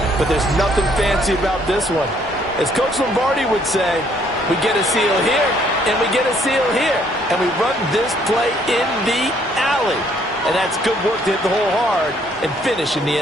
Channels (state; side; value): normal; both; correlation 0.65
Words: but there's nothing fancy about this one. As Coach Lombardi would say, we get a seal here, and we get a seal here, and we run this play in the alley. And that's good work to hit the hole hard and finish in the